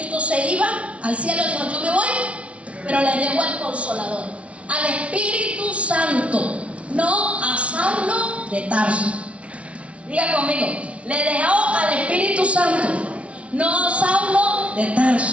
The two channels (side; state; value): left; late; 0.062 ms